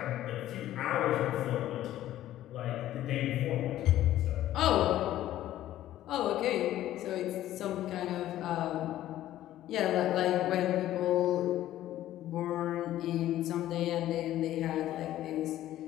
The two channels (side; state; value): right; quieter; 13.4 dB